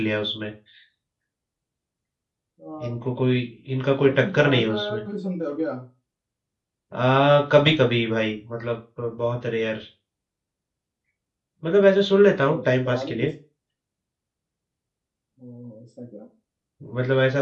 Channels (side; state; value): both; identical; correlation 1.00